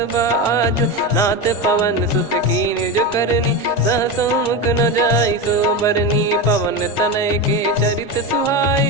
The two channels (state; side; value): normal; both; correlation 0.18